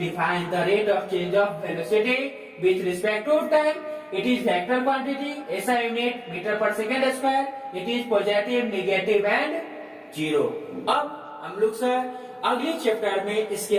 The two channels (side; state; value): both; identical; correlation 1.00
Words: the rate of change of velocity with respect to time. It is vector quantity, SI unit meter per second square. It is positive, negative and zero. अब हम लोग सर अगले chapter में इसके